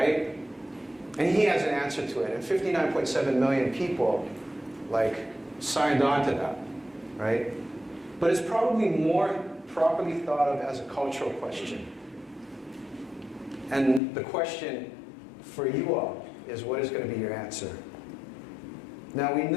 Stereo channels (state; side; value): drops out; right; at 14.0 s